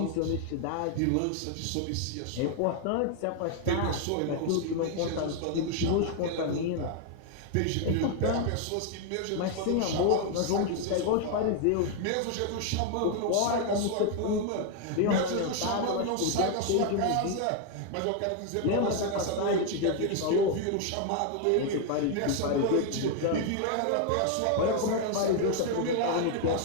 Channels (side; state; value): both; different; correlation 0.00